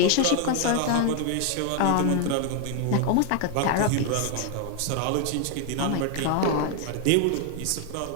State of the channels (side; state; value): both; different; correlation 0.00